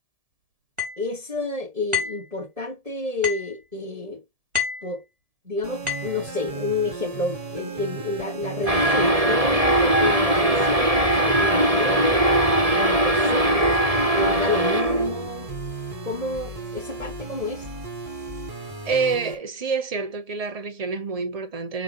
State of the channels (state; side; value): late; left; 1.7 ms